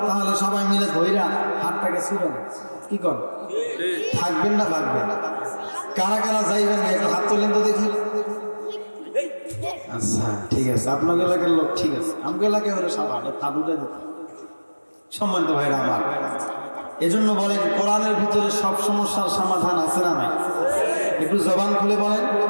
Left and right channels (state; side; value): inverted; both; correlation -1.00